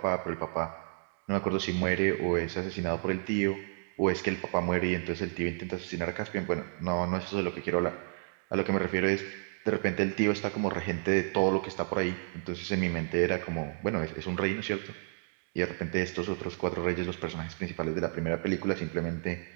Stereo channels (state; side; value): silent; left; 57 dB below the other